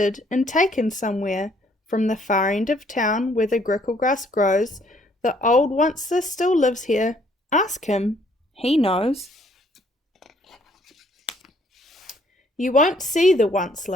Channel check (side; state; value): both; normal; correlation 0.64